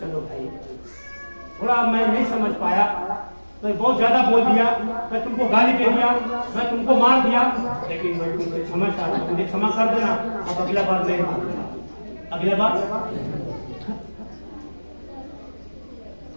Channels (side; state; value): both; inverted; correlation -1.00